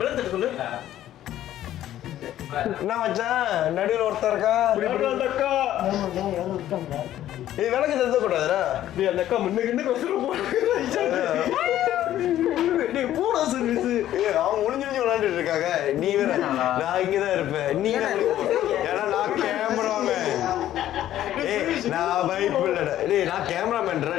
சொல்லு. என்ன மச்சான் நடுவில் ஒருத்தர் இருக்கா? அந்த அக்கா இது விளக்கு தந்த கூடாதுடா. நீ அந்த அக்கா முன்னுக்கு போடா சர்வீஸ். அவங்க முடிஞ்சு விளையாண்டுட்டு இருக்காங்க. நீ வேற நான் இங்கதான் இருப்பேன். நீ ஏன்னா நான் கேமராமேன். நான் பைப் இல்லடா. டேய் நான் கேமராமேன்டா.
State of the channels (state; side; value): quieter; right; 12.6 dB